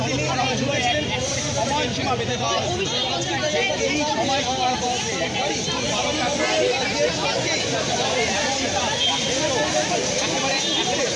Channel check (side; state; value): both; identical; correlation 1.00